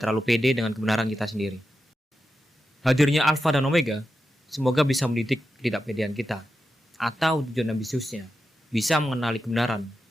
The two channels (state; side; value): normal; both; correlation 0.89